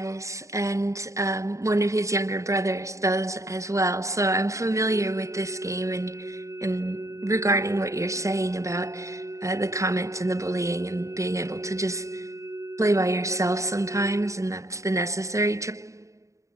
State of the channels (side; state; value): left; late; 0.15 ms